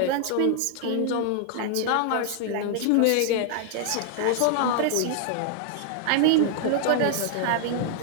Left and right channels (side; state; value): both; different; correlation 0.00